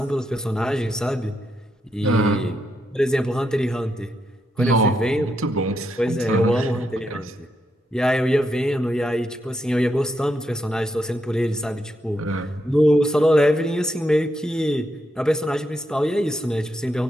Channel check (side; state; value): both; normal; correlation 0.81